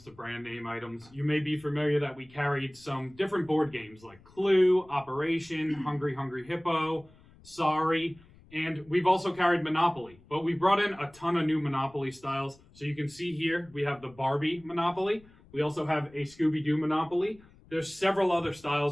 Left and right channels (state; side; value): noise; left; rumble, 26 dB below the sound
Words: to brand name items. You may be familiar that we carried some different board games like Clue, Operation, Hungry Hungry Hippo, Sorry, and we've also carried Monopoly. But we brought in a ton of new Monopoly styles. So you can see here, we have the Barbie Monopoly. We also have a Scooby-Doo Monopoly. There's several other